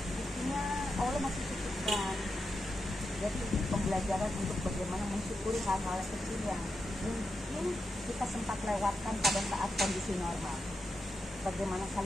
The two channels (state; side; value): normal; both; correlation 0.87